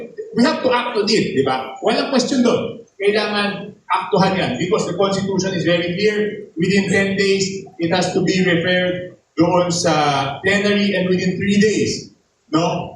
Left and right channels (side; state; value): both; identical; correlation 1.00